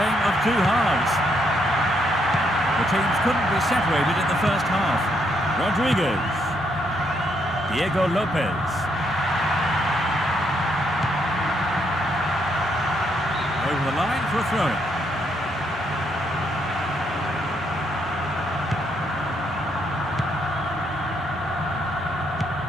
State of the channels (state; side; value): normal; both; correlation 0.74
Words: of two halves. The teams couldn't be separated in the first half. Rodriguez. Diego Lopez. Over the line for a throw-in.